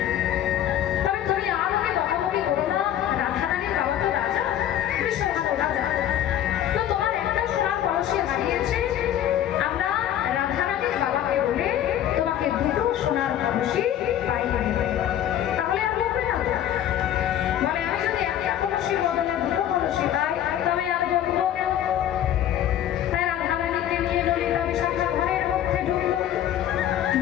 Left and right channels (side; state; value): right; quieter; 11.2 dB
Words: তবে তুমি আর ওকে বকাবকি করো না, রাধারানীর বাবা তো রাজা, বিশ্বভানু রাজা, তো তোমার একটা সোনার কলসি হারিয়েছে, আমরা রাধারানীর বাবাকে বলে তোমাকে দুটো সোনার কলসি পাইয়ে দেব। তাহলে আর বলবে না তো? বলে আমি যদি একটা কলসির বদলে দুটো কলসি পাই তবে আর বলবো কেন? তাই রাধারানীকে নিয়ে ললিতা বিশাখা ঘরের মধ্যে ঢুকল।